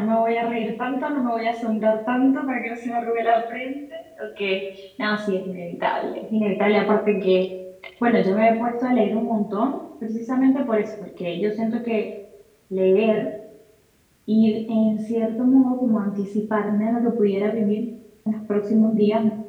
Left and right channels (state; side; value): identical; both; correlation 1.00